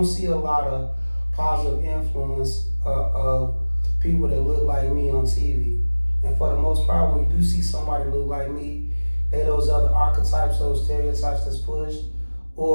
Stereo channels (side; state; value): both; inverted; correlation -1.00